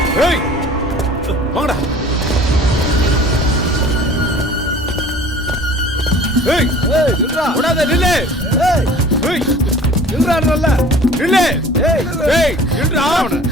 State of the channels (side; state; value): both; normal; correlation 0.46